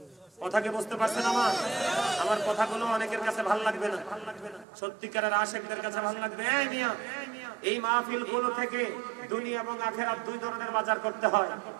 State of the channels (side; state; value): left; drops out; at 4.7 s